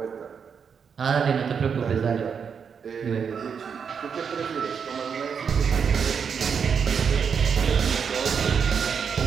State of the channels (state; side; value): quieter; left; 6.6 dB